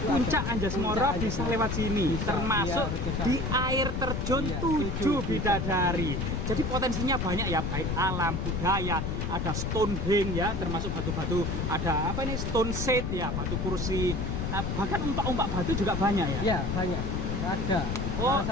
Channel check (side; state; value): left; noise; rumble, 1 dB below the sound